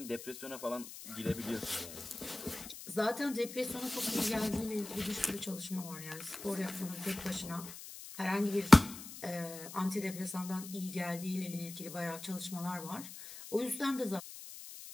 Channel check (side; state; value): left; noise; hiss, 12 dB below the sound